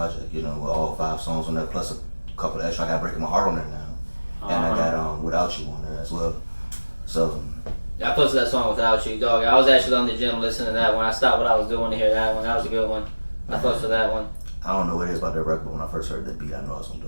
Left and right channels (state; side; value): inverted; both; correlation -1.00